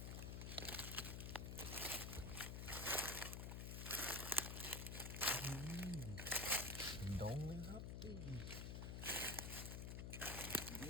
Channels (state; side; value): noise; left; hum, 4 dB below the sound